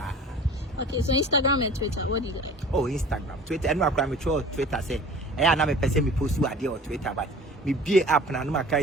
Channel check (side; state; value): both; normal; correlation 0.44